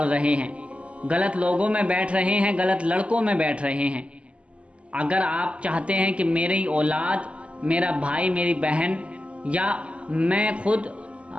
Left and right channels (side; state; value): left; late; 0.059 ms